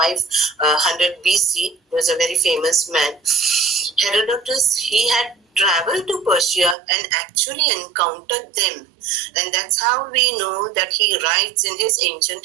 BC, was a very famous man. Herodotus, he had traveled to Persia and actually encountered them. And that's how we know that he writes in his ancient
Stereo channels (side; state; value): left; drops out; at 6.8 s